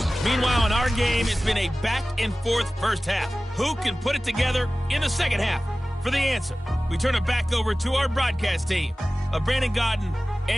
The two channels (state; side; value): normal; both; correlation 0.97